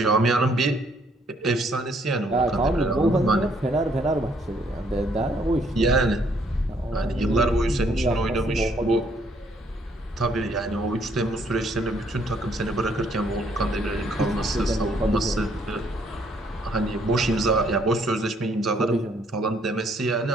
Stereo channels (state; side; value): normal; both; correlation 0.67